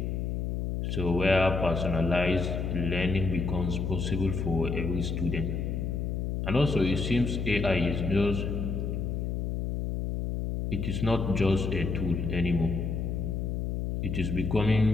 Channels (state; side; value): noise; left; hum, 1 dB below the sound